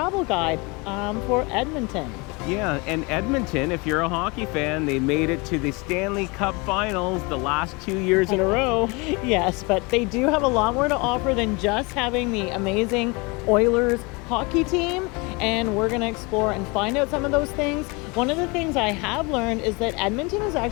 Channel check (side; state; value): right; quieter; 27.7 dB